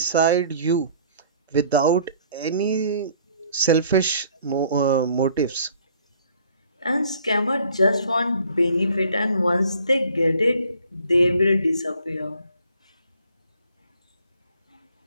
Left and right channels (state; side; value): inverted; both; correlation -0.57